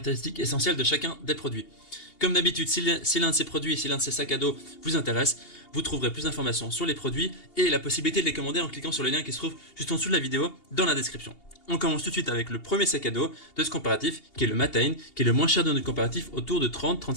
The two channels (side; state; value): right; late; 2.8 ms